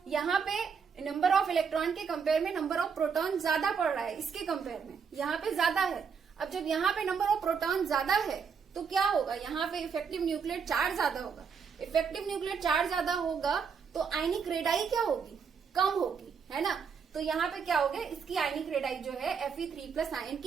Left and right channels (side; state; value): left; quieter; 6.3 dB